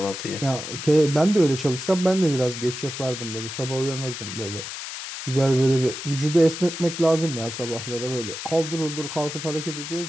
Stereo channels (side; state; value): left; noise; hiss, 8 dB below the sound